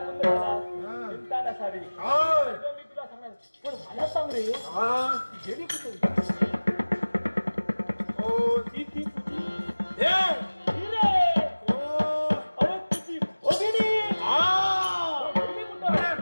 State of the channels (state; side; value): inverted; both; correlation -1.00